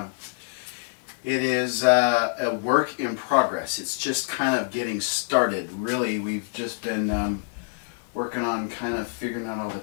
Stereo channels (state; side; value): silent; right; 61 dB below the other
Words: It is a work in progress. It's just kind of getting started. Really, we've just been working on kind of figuring out all the